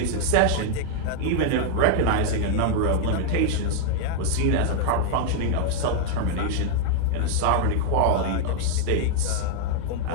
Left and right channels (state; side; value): different; both; correlation 0.00